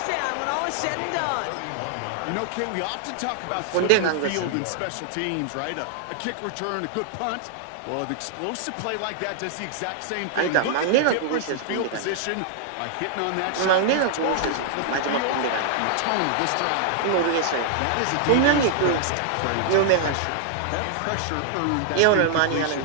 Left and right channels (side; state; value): both; different; correlation -0.01